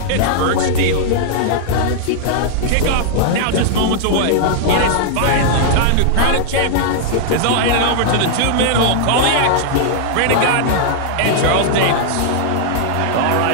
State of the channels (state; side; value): different; both; correlation -0.01